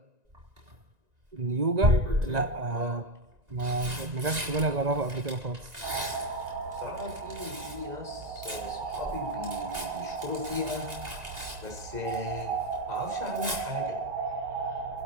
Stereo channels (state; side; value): late; left; 1.9 ms